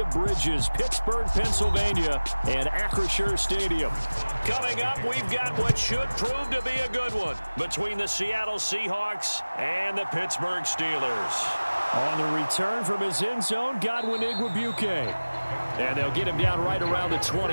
of bridges, Pittsburgh, Pennsylvania, and Acrisure Stadium. Coming up, we've got what should prove to be a good one between the Seattle Seahawks and the Pittsburgh Steelers. On the return from his end zone, Godwin Igwebuike. And they'll get him down right around the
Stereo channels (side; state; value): both; inverted; correlation -1.00